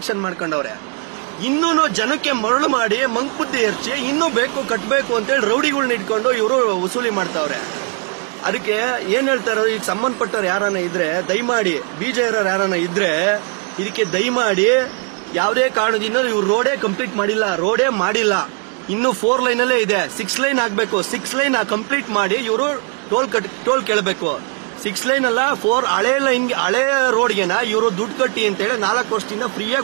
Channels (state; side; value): quieter; left; 34.5 dB